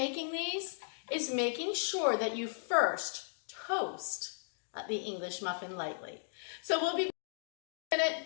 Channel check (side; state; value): right; silent; digital silence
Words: these is making sure that you first toast the English muffin lightly. So we'll be in a minute